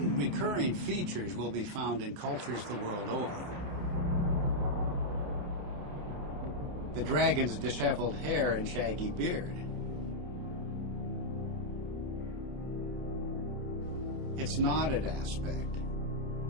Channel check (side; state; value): left; late; 29 ms